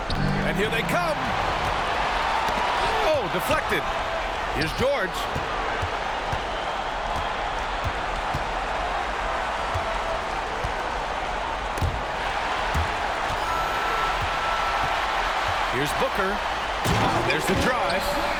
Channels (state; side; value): identical; both; correlation 1.00